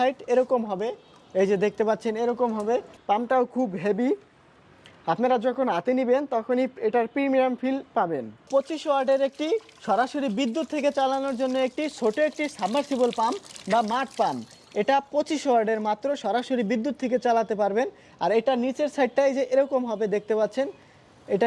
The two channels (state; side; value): identical; both; correlation 1.00